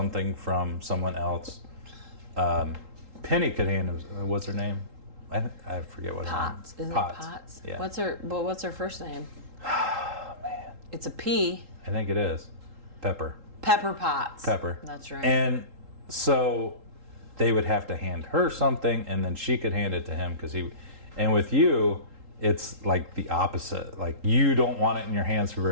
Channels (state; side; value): late; left; 3.8 ms